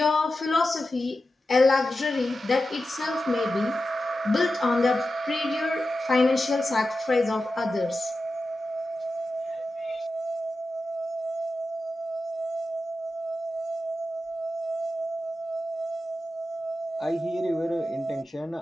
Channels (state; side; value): normal; both; correlation 0.92